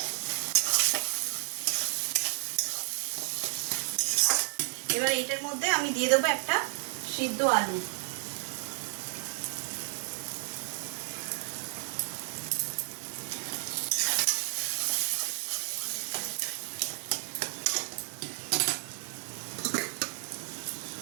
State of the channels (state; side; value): silent; left; 56 dB below the other